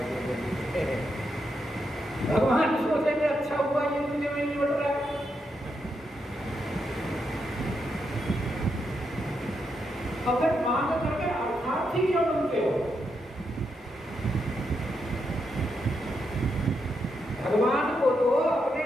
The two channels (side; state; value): both; normal; correlation 0.82